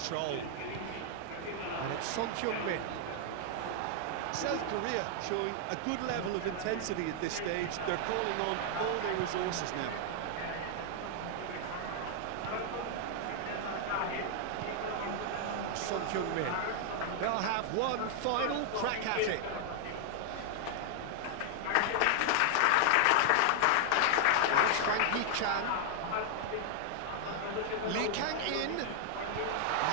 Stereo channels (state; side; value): different; both; correlation 0.00